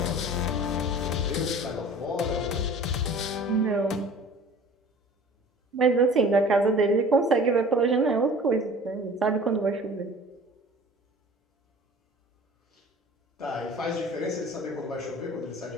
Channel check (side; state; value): both; normal; correlation 0.45